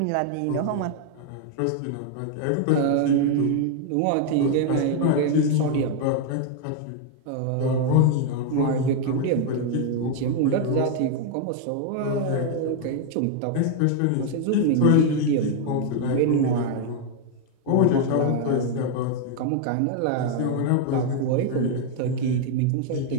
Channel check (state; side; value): different; both; correlation 0.00